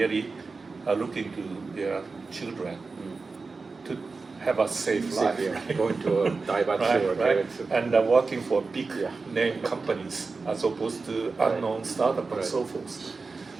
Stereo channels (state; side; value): quieter; left; 4.2 dB